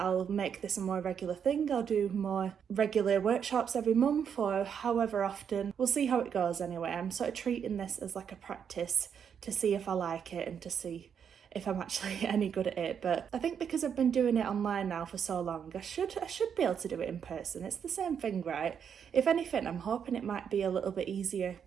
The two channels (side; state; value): left; quieter; 7.6 dB